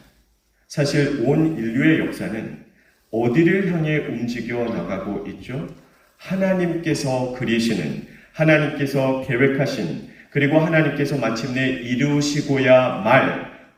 사실 온 인류의 역사는 어디를 향해 움직여 나가고 있죠? 하나님께서 그리시는, 하나님께서 계획하신, 그리고 하나님께서 마침내 이루시고야 말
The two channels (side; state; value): both; identical; correlation 1.00